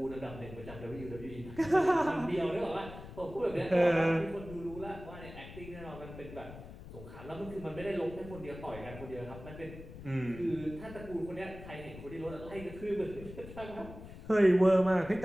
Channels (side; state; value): left; noise; rumble, 14 dB below the sound